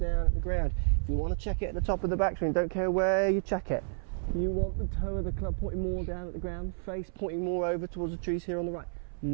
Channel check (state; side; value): silent; left; 57 dB below the other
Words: at the ground. If you want to check it at the top of the backswing, don't care where you check it. You want the toe of the club pointing more down at the ground, face pointing more over towards the trees here on the right,